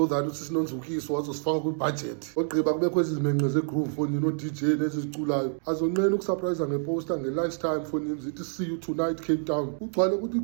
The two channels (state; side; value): silent; left; 60 dB below the other